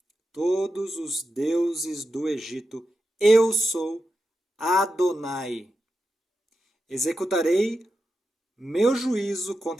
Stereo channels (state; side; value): normal; both; correlation 0.89